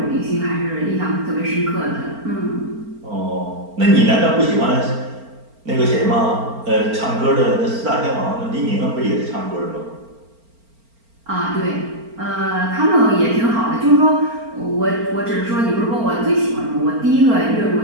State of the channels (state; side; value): late; left; 4.4 ms